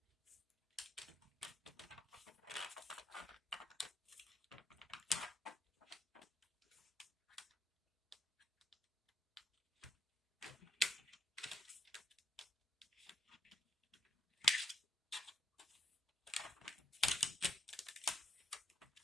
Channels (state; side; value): normal; both; correlation 0.78